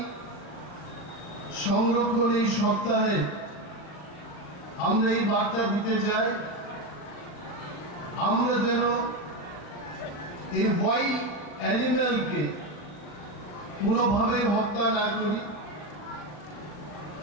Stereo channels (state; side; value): late; right; 39 ms